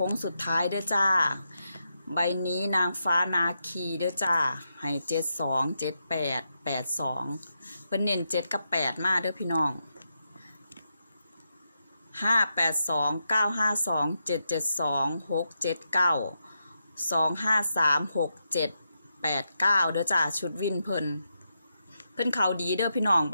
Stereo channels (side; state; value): both; inverted; correlation -0.85